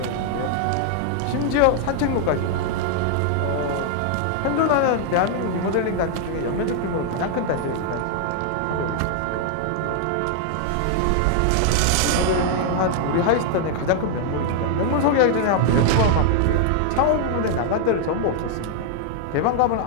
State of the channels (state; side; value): different; both; correlation 0.00